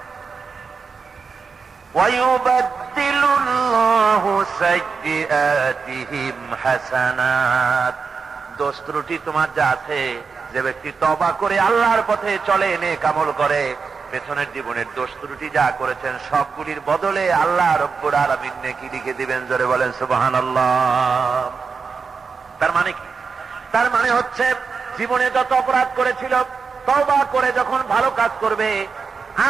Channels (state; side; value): quieter; left; 5.2 dB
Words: ওয়ায়ুবাদদিলুল্লাহু সাইয়্যাতিহিম হাসানাত। দোষ ত্রুটি তোমার যা আছে, যে ব্যক্তি তওবা করে আল্লাহর পথে চলে, নেক আমল করে, পেছনের জীবনের দোষ ত্রুটি যা করেছেন সবগুলির বদলে আল্লাহ রব্বুল আলামিন নেকি লিখে দিবেন। জোরে বলেন সুবহানাল্লাহ। তার মানে কি? তার মানে হচ্ছে জীবনে যত অপরাধ করেছিল, তওবা করে যখন ভালো কাজ করবে,